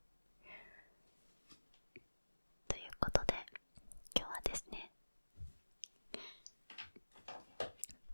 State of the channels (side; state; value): both; inverted; correlation -1.00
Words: ということで今日はですね、